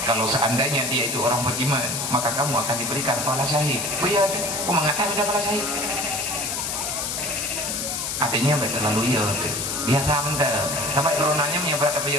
Kalau seandainya dia itu orang beriman, maka kamu akan diberikan pahala syahid. Oh iya, aku mengatakan ada pahala syahid. Artinya terlalu iya, biasa anda. Sampai coronanya menyebar ke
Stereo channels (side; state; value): left; noise; hiss, 2 dB below the sound